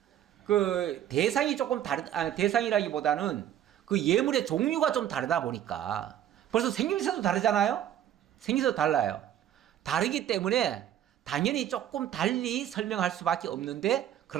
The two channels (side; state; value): left; quieter; 11.0 dB